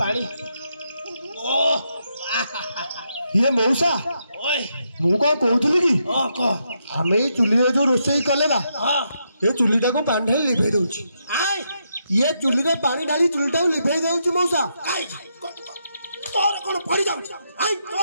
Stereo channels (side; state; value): both; inverted; correlation -0.80